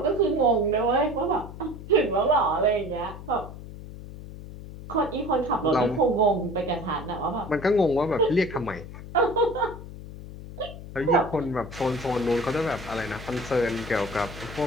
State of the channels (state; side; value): noise; left; hum, 13 dB below the sound